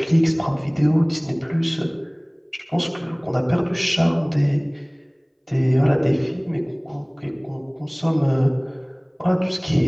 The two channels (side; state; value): both; identical; correlation 1.00